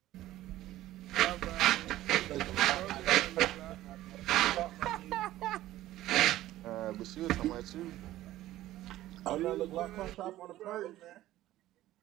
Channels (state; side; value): quieter; left; 14.9 dB